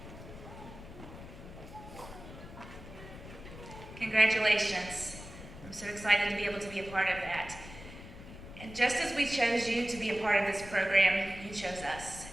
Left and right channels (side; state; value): left; noise; rumble, 14 dB below the sound